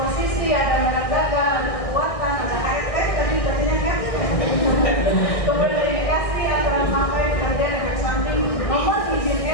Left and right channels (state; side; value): late; right; 1.6 ms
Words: ada merek dagang, ada kekuatan, ada HRT, tadi jadinya kan. Kemudian indikasi antara pemakaian kerja efek samping, nomor izin